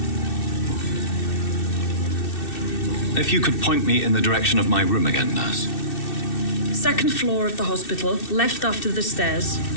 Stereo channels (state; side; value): late; right; 2.6 ms